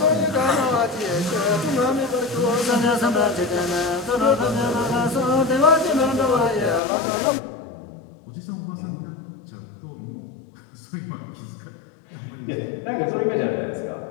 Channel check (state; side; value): drops out; right; at 6.8 s